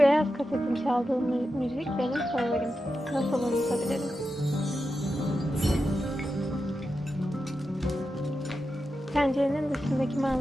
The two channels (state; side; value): normal; both; correlation 0.89